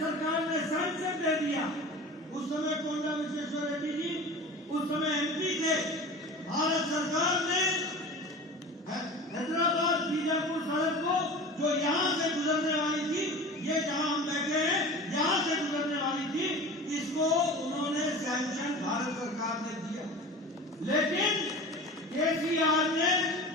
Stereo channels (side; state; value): both; normal; correlation 0.35